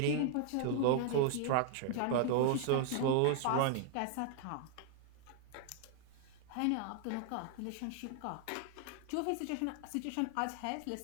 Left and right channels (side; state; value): both; different; correlation 0.00